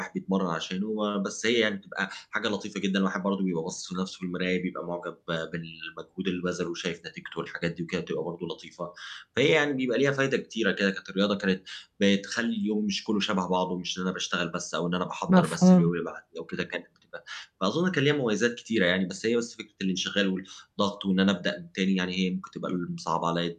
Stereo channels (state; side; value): identical; both; correlation 1.00